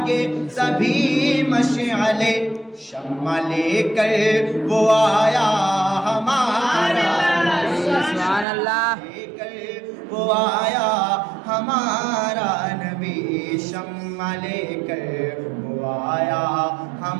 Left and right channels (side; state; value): left; drops out; at 8.5 s